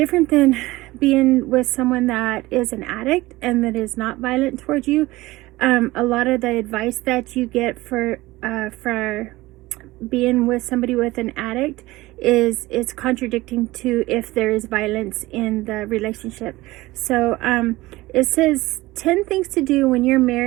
than being with someone that is an addict and that is not violent towards you. A lot of the advice that you get for being with somebody with an addict is contradicting to if there is violence in the relationship. So it says 10 things to do when you're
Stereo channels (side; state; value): left; quieter; 19.2 dB